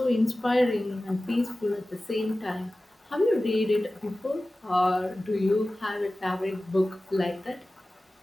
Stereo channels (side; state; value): both; normal; correlation 0.96